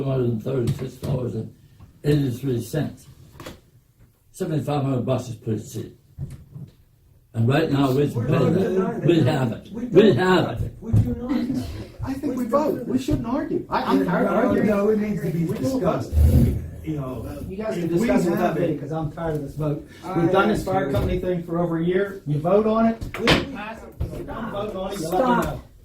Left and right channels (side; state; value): both; identical; correlation 1.00